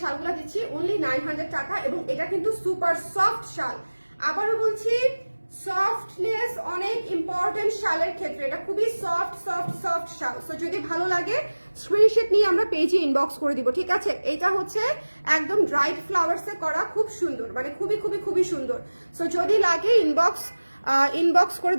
শালগুলা দিচ্ছি অনলি 900 টাকা, এবং এটা কিন্তু সুপার সফট শাল। আবারও বলছি, সফটনেস অনেক ইম্পর্টেন্ট শালের ক্ষেত্রে, এটা খুবই সফট শাল। সো যদি ভালো লাগে স্ক্রিনশট নিয়ে আমরা পেজে ইনবক্স করে দিব। ঠিক আছে, এটা হচ্ছে একদম ড্রাইড ফ্লাওয়ার্সে করা, খুব সুন্দর, মানে খুবই সুন্দর। সো যদি লাগে ইনবক্স করে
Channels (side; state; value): both; inverted; correlation -1.00